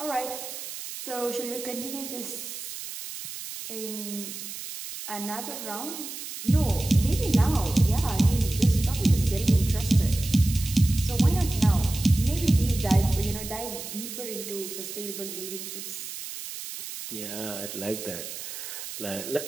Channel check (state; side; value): noise; right; hiss, 9 dB below the sound